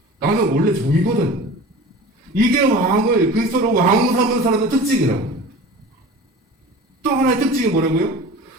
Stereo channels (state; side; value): normal; both; correlation 0.38